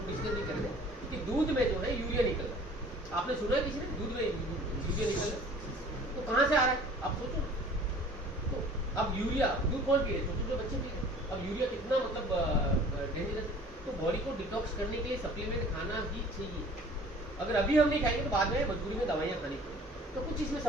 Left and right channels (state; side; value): normal; both; correlation 0.49